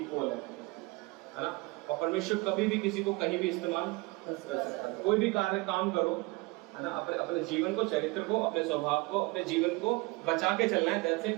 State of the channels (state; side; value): quieter; left; 24.0 dB